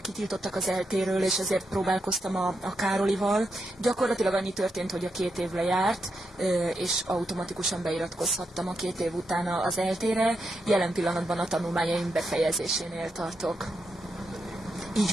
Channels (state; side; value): normal; both; correlation 0.83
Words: az eltéről, és ezért próbálkoztam a Károlival. Gyakorlatilag annyi történt, hogy a 2 év lejárt, és automatikusan beiratkozhattam a 2 év után az eltére. Jelen pillanatban a tanulmányaim befejezésénél tartok. Így